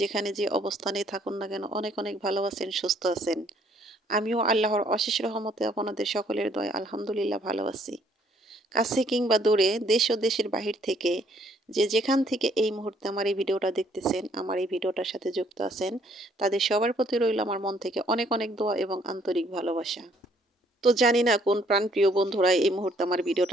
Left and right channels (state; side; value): normal; both; correlation 0.65